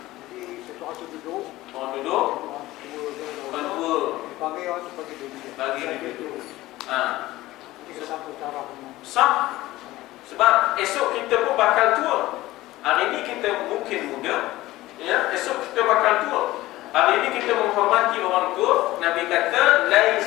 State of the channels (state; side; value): quieter; right; 17.3 dB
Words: Jadi satu tu duduk. Orang duduk. Orang dua. Dipanggil orang tu bagi duduk. Bagi duduk. Jadi satu cara kamu. Sah. Sebab esok kita pun bakal tua. Hari ini kita mungkin muda, ya, esok kita bakal tua. Hari ini kita menghormati orang tua. Nabi kata